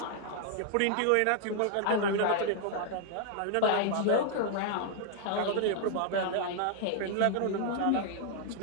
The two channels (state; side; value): different; both; correlation 0.00